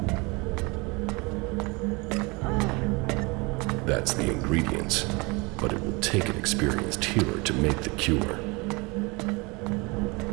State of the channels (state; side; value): quieter; left; 27.0 dB